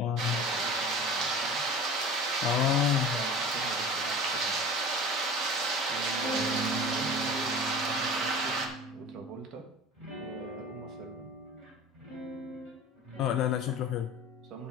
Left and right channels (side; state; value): both; normal; correlation 0.37